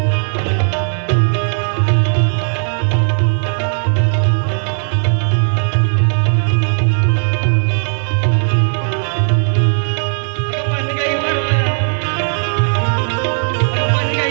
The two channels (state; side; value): silent; left; 69 dB below the other